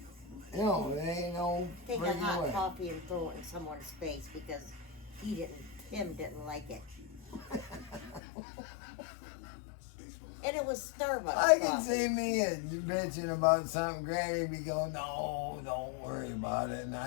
You know, it ain't no take a hot coffee and throw it in someone's face because Tim didn't like it. And it was Starbucks. I can see me bitching about something. Granny be going, no, don't worry about it. And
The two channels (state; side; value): drops out; right; at 8.2 s